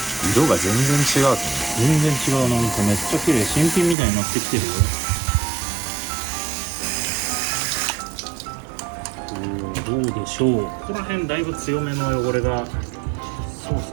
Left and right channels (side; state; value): left; drops out; at 4.0 s